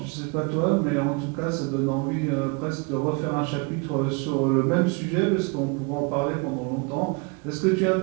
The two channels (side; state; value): left; quieter; 30.8 dB